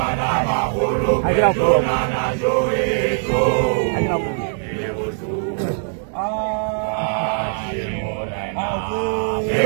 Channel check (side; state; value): left; silent; digital silence